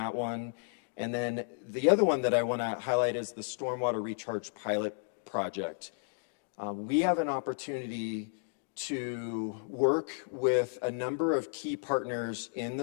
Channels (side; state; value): right; silent; digital silence